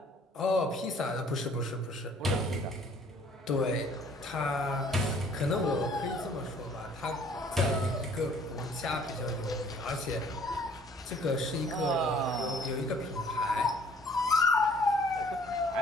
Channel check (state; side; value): normal; both; correlation 0.57